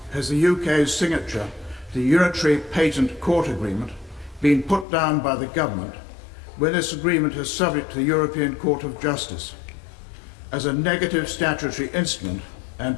has the UK's signature to the Unitary Patent Court Agreement been put down by the government when this agreement is subject to the European Court of Justice as a negative statutory instrument and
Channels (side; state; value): right; drops out; at 4.9 s